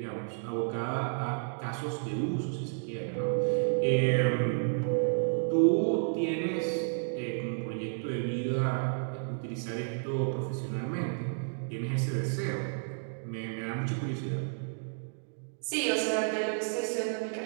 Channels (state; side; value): silent; left; digital silence